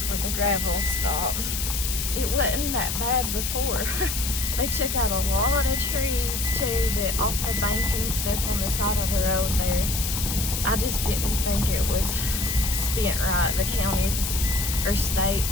where the gravel stopped. It wasn't that bad before. They took out a lot of trees too, off the bank and stuff on the side of the road there. I just didn't think it was spent right. The counties or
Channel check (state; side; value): noise; left; hiss, 2 dB below the sound